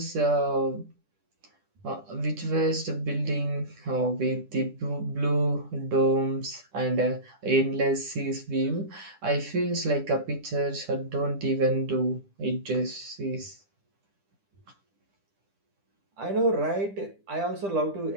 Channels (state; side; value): late; left; 10 ms